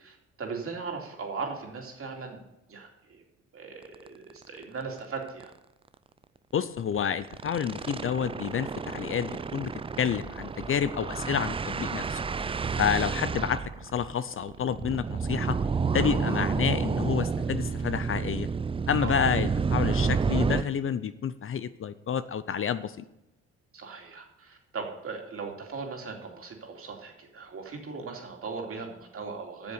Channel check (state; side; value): normal; both; correlation 0.34